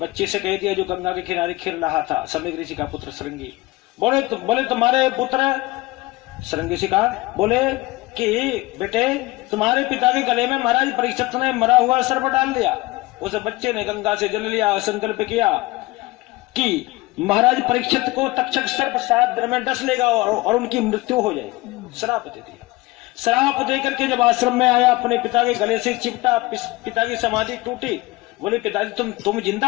से कह दिया जो गंगा के किनारे खेल रहा था, समीक ऋषि का पुत्र श्रृंगी, बोले तुम्हारे पुत्र, श्रृंगी ऋषि का बोले कि बेटे तुम्हारे पिता के गले में महाराज परीक्षित ने मरा हुआ सर्प डाल दिया। उस बच्चे ने गंगा से जल लिया, संकल्प किया कि महाराज परीक्षित को तक्षक सर्प 7 दिन में डस लेगा और उनकी मृत्यु हो जाएगी। श्राप दे दिया। श्राप देकर के जब आश्रम में आया, अपने पिता के गले से चिपटा, पिता की समाधि टूटी। बोले पिताजी तुम जिंदा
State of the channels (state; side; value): quieter; right; 20.7 dB